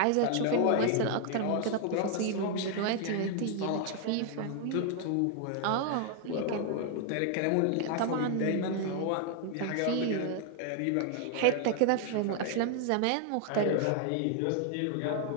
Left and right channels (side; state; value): both; different; correlation 0.00